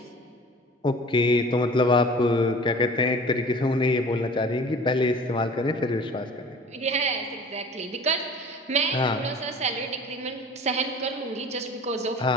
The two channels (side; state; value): both; normal; correlation 0.44